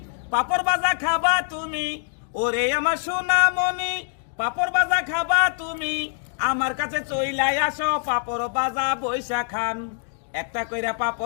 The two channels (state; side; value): silent; right; digital silence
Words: পাপড় বাজা খাবা তুমি, ওরে আমার সোনামণি পাপড় বাজা খাবা তুমি, আমার কাছে চইলাই আসো পাপড় বাজা বইসা খান। একটা কইরা